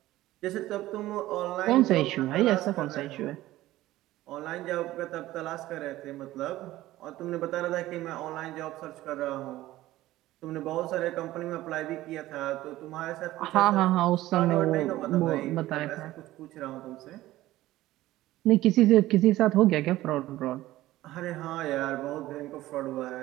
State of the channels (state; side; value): quieter; left; 16.1 dB